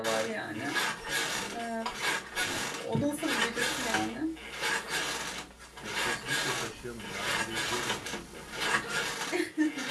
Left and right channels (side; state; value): both; identical; correlation 1.00